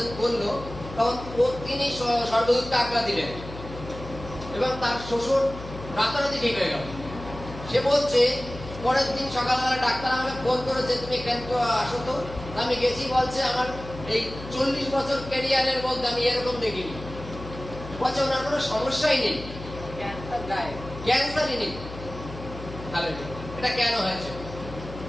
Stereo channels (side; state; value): left; noise; hum, 12 dB below the sound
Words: বললো, তখন তিনি স্বর্গদূতকে আজ্ঞা দিলেন এবং তার শ্বশুর রাতারাতি ঠিক হয়ে গেল। সে বলছে পরের দিন সকালবেলা ডাক্তার আমাকে ফোন করেছে, তুমি কেন আসো তো। আমি গেছি, বলছে আমার এই 40 বছর ক্যারিয়ারের মধ্যে আমি এরকম দেখিনি। বলছে ওনার কোনো সমস্যাই নেই, ক্যান্সারই নেই। হালেলুয়া। এটা কেন হয়েছে?